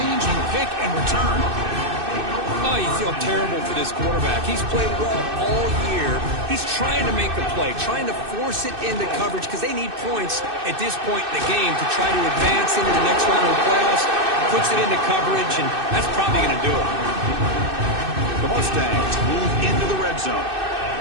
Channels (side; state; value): left; late; 2.6 ms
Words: pick and return. Oh, you feel terrible for this quarterback. He's played well all year. He's trying to make the play, trying to force it into coverage because they need points at this point in the game to try to advance into the next round of the playoffs. Puts it into coverage, and that's probably going to do it. The Mustangs move into the red zone.